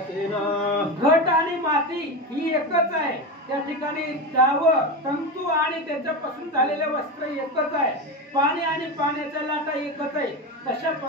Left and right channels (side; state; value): both; normal; correlation 0.20